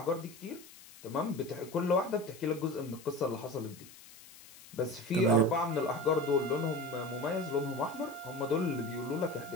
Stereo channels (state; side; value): noise; left; hiss, 20 dB below the sound